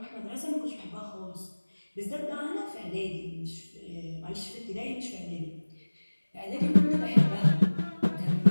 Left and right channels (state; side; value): inverted; both; correlation -1.00